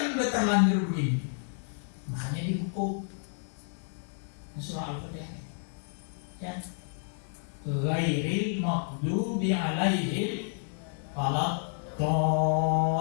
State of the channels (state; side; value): silent; right; digital silence